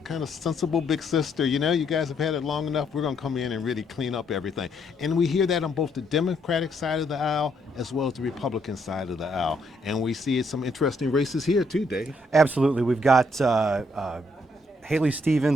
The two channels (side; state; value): both; normal; correlation 0.72